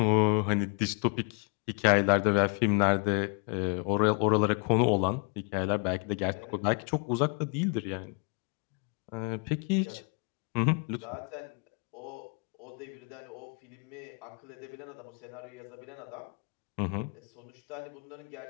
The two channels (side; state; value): right; quieter; 37.0 dB